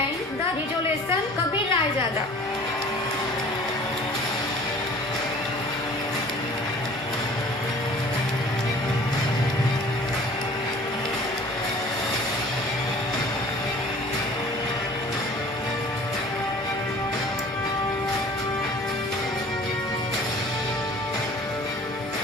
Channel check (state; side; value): normal; both; correlation 0.48